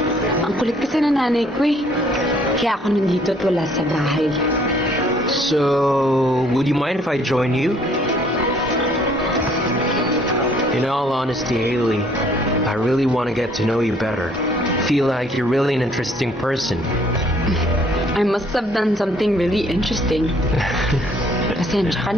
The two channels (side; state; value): both; normal; correlation 0.61